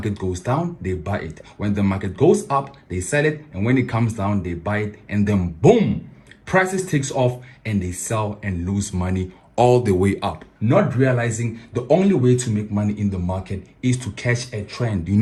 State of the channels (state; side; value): identical; both; correlation 1.00